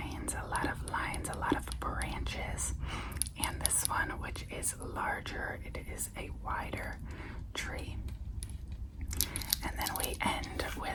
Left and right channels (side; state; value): both; identical; correlation 1.00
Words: a lot of branches. And this one, which is larger, it is a wider tree. And then we end